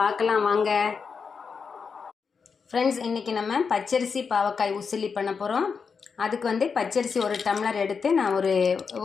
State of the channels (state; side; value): quieter; right; 5.6 dB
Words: பார்க்கலாம் வாங்க ஃப்ரெண்ட்ஸ். இன்றைக்கி நம்ம பச்சரிசி பாவக்காய் உசிலி பண்ண போகிறோம். அதுக்கு பச்சரிசி ஒரு டம்ளர் எடுத்து நான்